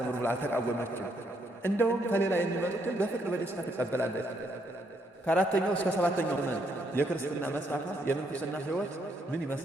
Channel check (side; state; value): both; normal; correlation 0.74